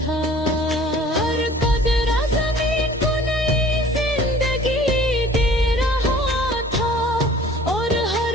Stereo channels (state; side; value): normal; both; correlation 0.50